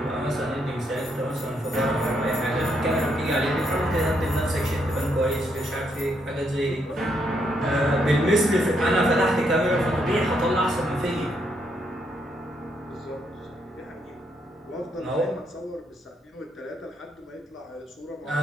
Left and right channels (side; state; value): both; normal; correlation 0.76